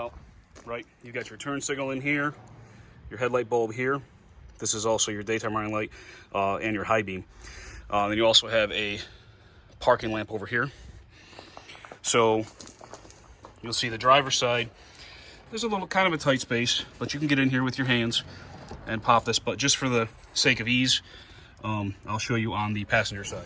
right? You got your turn signal in here, your headlight bulb here. This is also your daytime running light and your high beam. Then you also have a parking lamp over here. So you'll see the driver's side. There's a little kind of a tight space, but you can get in here with your hands and pop this, but just for the sake of ease, I'll show you on the passenger side.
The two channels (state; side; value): identical; both; correlation 1.00